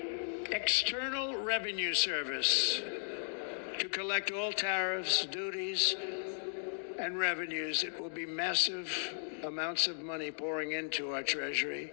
External Revenue Service to collect all tariffs, duties, and revenues. It will be massive amounts of money pouring into our treasury.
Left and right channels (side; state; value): right; silent; digital silence